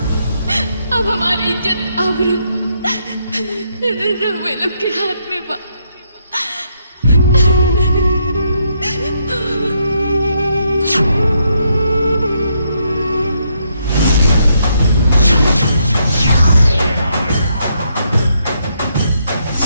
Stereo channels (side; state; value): both; inverted; correlation -0.76